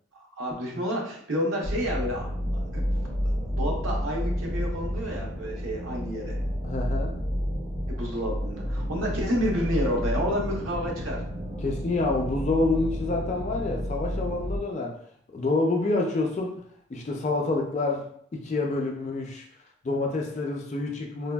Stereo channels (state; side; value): normal; both; correlation 0.60